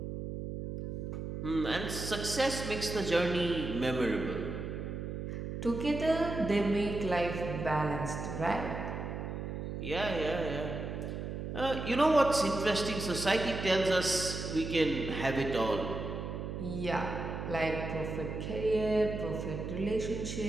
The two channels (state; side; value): noise; right; hum, 5 dB below the sound